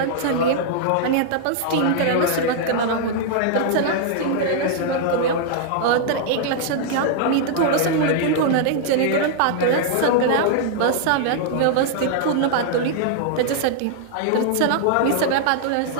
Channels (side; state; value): both; different; correlation -0.01